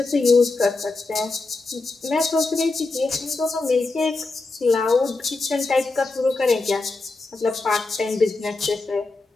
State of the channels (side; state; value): right; quieter; 3.5 dB